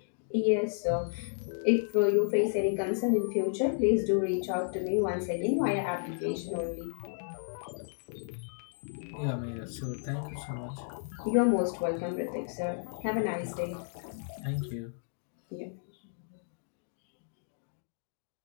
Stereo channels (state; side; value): silent; right; digital silence